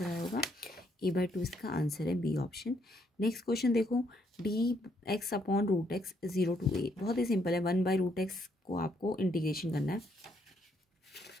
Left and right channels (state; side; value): normal; both; correlation 0.72